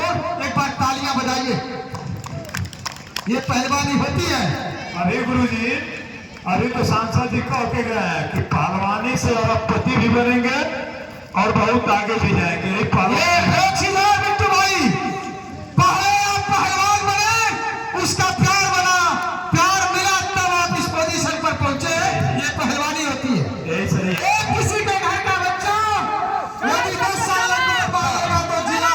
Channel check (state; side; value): identical; both; correlation 1.00